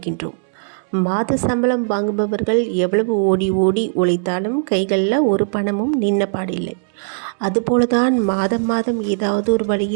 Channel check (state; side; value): silent; left; 67 dB below the other